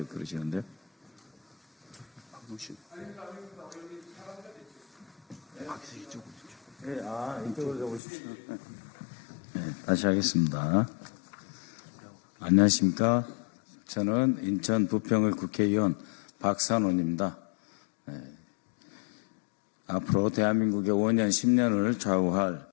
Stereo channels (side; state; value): right; drops out; at 8.0 s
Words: 그러시는데요. 네, 이쪽으로 오십시오. 네, 다시 하겠습니다. 안녕하십니까? 저는 인천 부평을 국회의원 박선원입니다. 네. 앞으로 대한민국의 5년, 10년을 좌우할